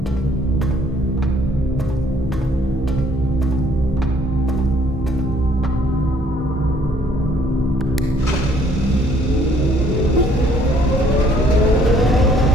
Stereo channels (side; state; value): both; normal; correlation 0.63